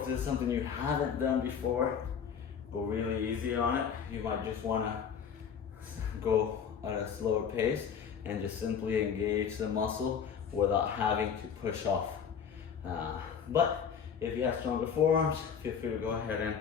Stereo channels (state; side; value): quieter; right; 7.3 dB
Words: this is something you haven't done before. Go really easy on it. You might just want to go at a slower pace and just simply engage the muscle without having to push off. But if you have stronger forearms, feel free to go ahead and